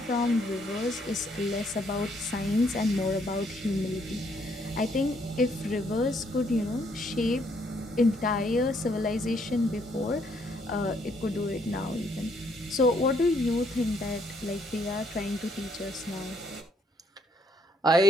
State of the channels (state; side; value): normal; both; correlation 0.70